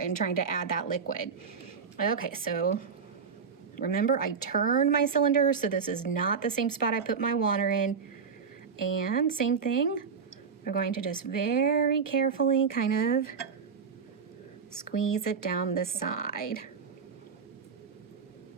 trying to add that liquid. Okay, so remember I turned my cylinder, so this is not the same spot I put my water in. And same thing, we're going to just very carefully kind of squeeze it down the side.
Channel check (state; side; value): quieter; left; 6.0 dB